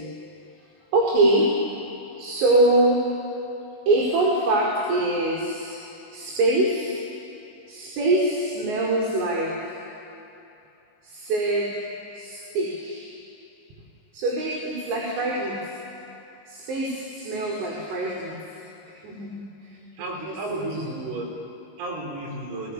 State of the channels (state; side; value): late; left; 19 ms